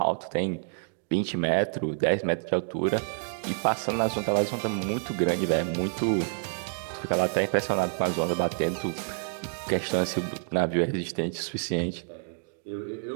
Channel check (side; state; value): left; silent; digital silence